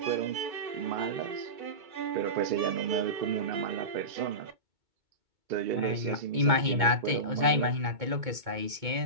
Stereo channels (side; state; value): left; late; 2.2 ms